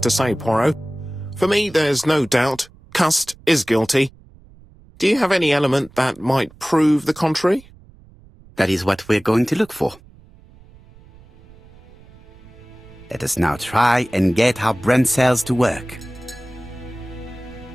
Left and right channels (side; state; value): right; noise; rumble, 24 dB below the sound